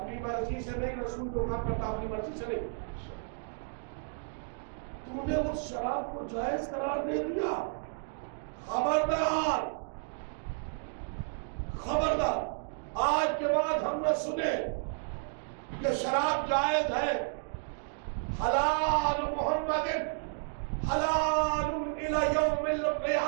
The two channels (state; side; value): silent; left; digital silence